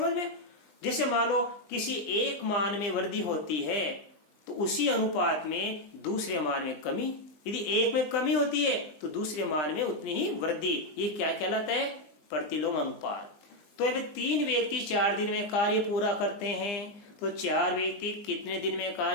में? जैसे मान लो किसी एक मान में वृद्धि होती है तो उसी अनुपात में दूसरे मान में कमी, यदि एक में कमी होती है तो दूसरे मान में उतनी ही वृद्धि। ये क्या कहलाता है? प्रतिलोम अनुपात। तो अब 3 व्यक्ति 4 दिन में कार्य पूरा करते हैं, तो 4 व्यक्ति कितने दिन में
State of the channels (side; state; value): right; late; 20 ms